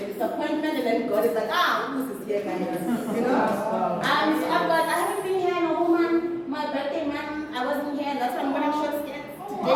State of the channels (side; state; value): both; identical; correlation 1.00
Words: disappointment and then God is like, Lucy is here, guys. You know? So I haven't been here in a whole month. My birthday month, I wasn't here. That's why I'm wearing short skirts